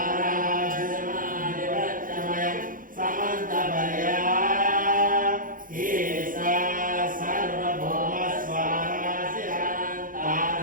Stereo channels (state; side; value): late; left; 0.40 ms